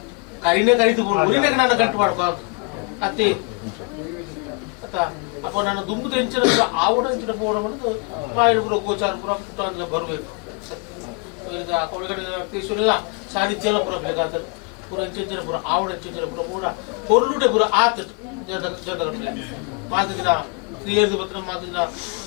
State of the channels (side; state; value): right; quieter; 31.9 dB